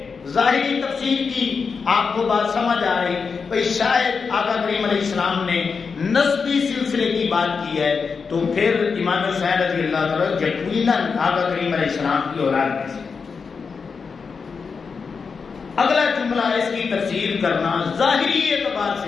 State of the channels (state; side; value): quieter; right; 5.4 dB